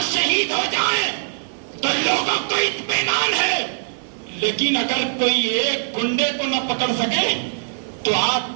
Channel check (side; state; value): left; silent; digital silence